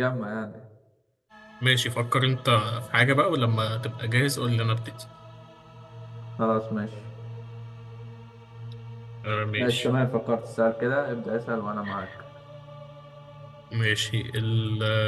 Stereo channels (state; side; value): identical; both; correlation 1.00